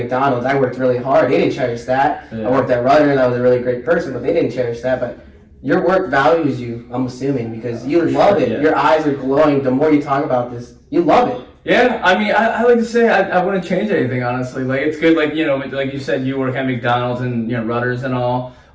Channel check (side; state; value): both; identical; correlation 1.00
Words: I worked really hard. They didn't cherish that. Yeah. I worked at Realtor, I was a really great person, but they didn't cherish that. But your work values you, I'm assuming, because you love it. Yeah. Your eyes are glowing. The more you talk about this, you love it. Yeah, I mean, I like to say I wouldn't change anything, honestly. It's good, like you said, you work at McDonald's and, Rudders and all.